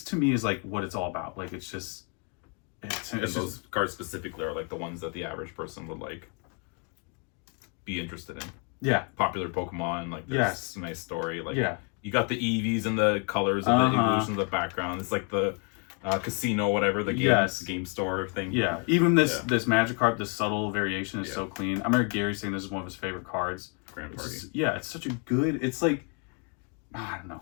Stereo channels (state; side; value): quieter; right; 37.6 dB